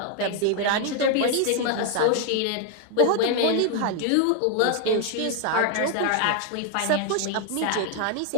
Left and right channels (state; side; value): different; both; correlation 0.00